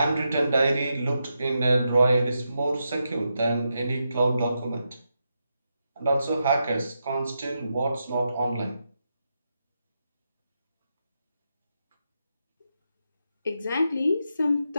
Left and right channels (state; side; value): inverted; both; correlation -0.85